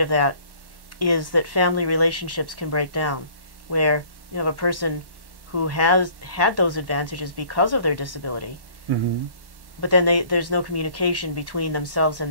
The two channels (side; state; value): left; late; 1.1 ms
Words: of that is that family relationships can break down, where you have a person who has had those advantages because of their disability, but then there's no communication between themselves and